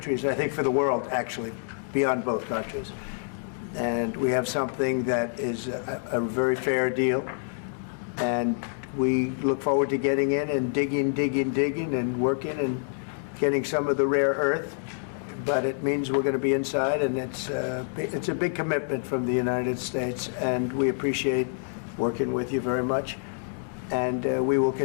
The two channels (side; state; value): right; silent; digital silence